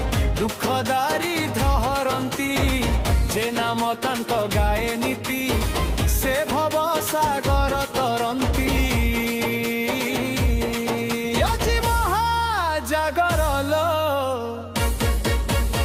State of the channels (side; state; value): both; identical; correlation 1.00